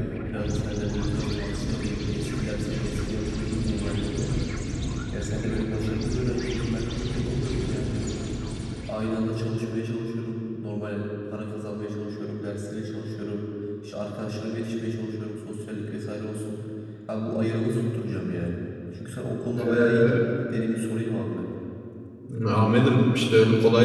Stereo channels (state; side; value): identical; both; correlation 1.00